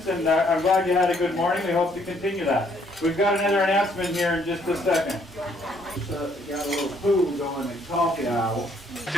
and I'm glad you had a good morning. We hope to continue that. We've got another announcement here in just a second. Got a little food going in coffee aisle.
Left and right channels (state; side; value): normal; both; correlation 0.67